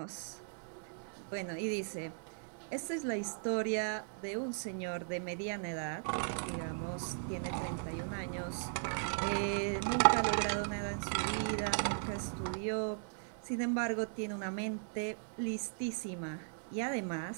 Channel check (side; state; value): left; silent; digital silence